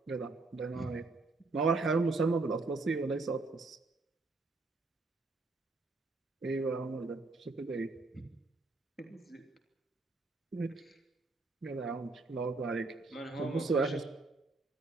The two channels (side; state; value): left; quieter; 3.6 dB